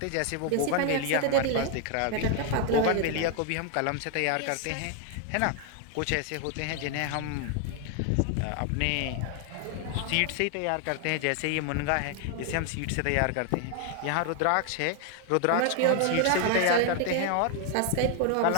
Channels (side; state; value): both; different; correlation 0.00